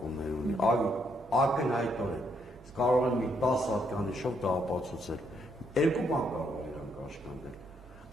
ունի, ակնհայտորեն, կարող են մի 10 հատկանիշով դա ապացուցել, երկու բան կարող է իրան կաշկանդել,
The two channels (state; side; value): normal; both; correlation 0.74